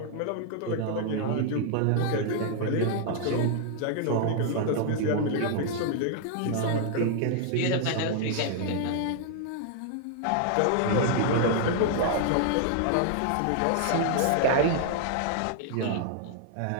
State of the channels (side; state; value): both; different; correlation -0.01